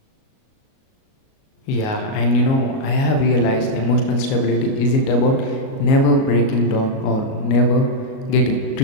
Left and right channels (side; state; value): right; late; 37 ms